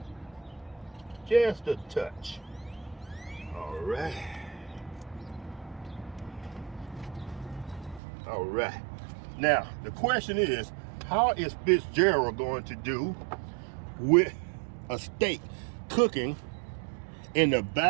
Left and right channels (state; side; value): drops out; left; at 8.0 s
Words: Just a touch. All right. All right. Now, the question is, how is Fitzgerald going to do with a steak cooking in the